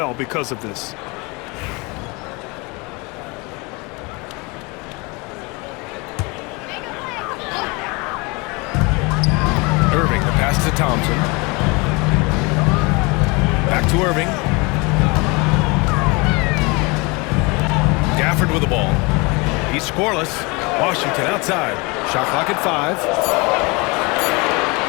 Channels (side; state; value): right; quieter; 27.3 dB